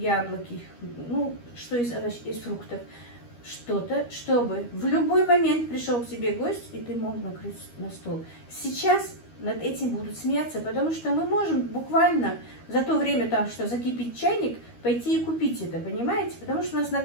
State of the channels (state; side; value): late; right; 13 ms